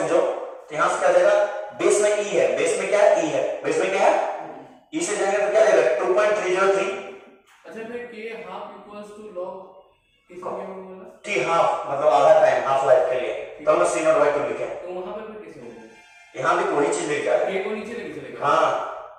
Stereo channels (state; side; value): identical; both; correlation 1.00